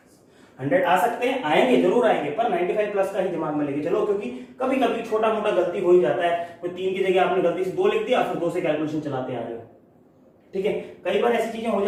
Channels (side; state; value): both; identical; correlation 1.00